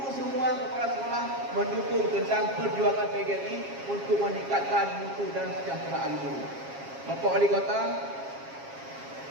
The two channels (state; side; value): late; left; 7.4 ms